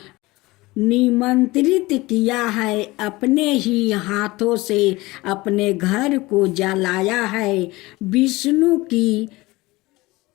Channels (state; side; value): quieter; right; 20.9 dB